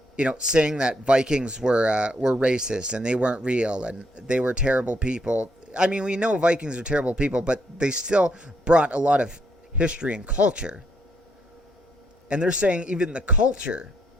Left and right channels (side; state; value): both; normal; correlation 0.74